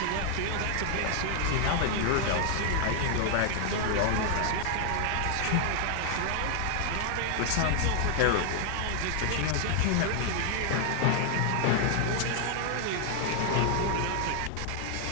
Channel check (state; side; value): different; both; correlation 0.00